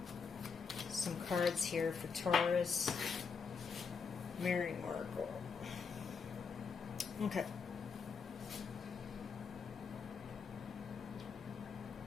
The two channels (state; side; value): quieter; right; 5.6 dB